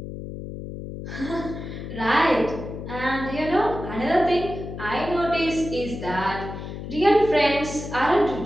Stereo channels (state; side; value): noise; left; hum, 9 dB below the sound